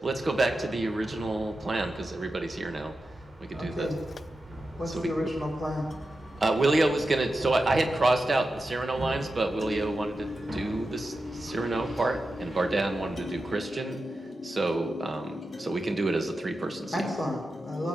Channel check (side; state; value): both; normal; correlation 0.91